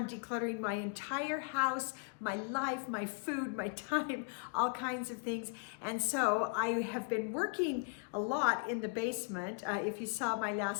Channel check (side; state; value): right; quieter; 39.6 dB